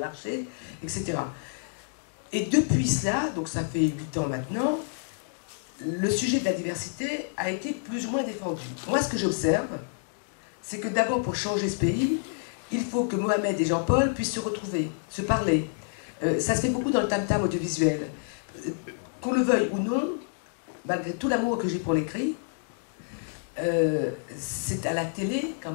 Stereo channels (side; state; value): right; silent; digital silence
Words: etc. Et depuis cela, donc ça fait 8 ans maintenant, le sujet de la diversité a été plus ou moins défendu. Moi, ce que j'observe, c'est que d'abord, pour changer ce pays, il faut que Mohamed et Jean-Paul puissent se retrouver, se parler. Ça se fait beaucoup dans le tam-tam audiovisuel. Qu'on le veuille ou non, malgré tout l'amour que j'ai pour l'écrit, c'est à la télé, quand